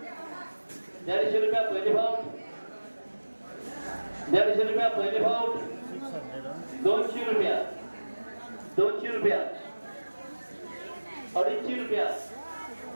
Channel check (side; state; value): both; inverted; correlation -1.00